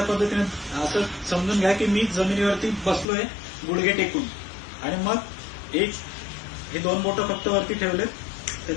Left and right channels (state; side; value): drops out; right; at 3.1 s